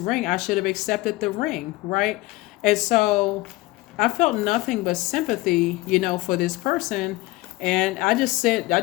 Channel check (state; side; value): quieter; right; 20.5 dB